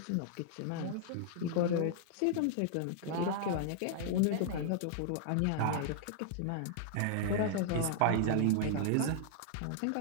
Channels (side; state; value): both; different; correlation -0.01